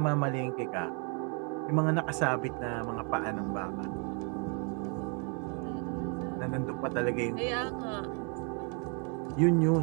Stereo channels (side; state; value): left; quieter; 37.2 dB